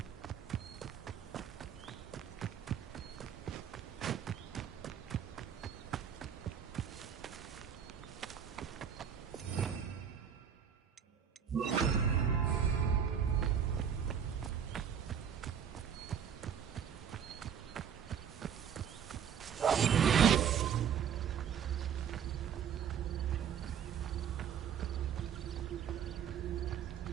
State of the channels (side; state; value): left; quieter; 8.1 dB